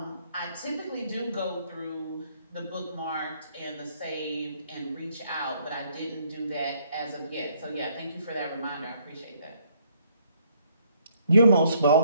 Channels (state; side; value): inverted; both; correlation -0.67